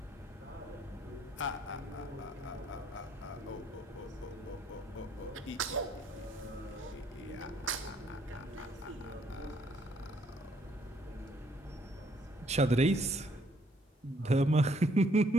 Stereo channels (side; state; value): both; normal; correlation 0.66